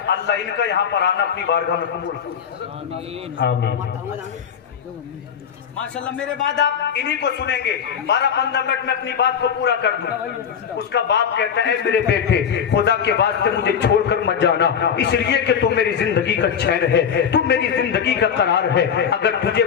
अल्लाह इनका यहाँ पर आना अपनी बारगाह में कबूल। माशाल्लाह। मेरे बाद आप इन्हीं को सुनेंगे। 12-15 मिनट में अपनी बात को पूरा कर दूं। उसका बाप कहता है, मेरे बेटे खुदा के वास्ते मुझे छोड़कर मत जाना, इसलिए कि तू मेरी जिंदगी का चैन है, तू मेरी जिंदगी का करार है। अगर तुझे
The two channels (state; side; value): quieter; right; 7.6 dB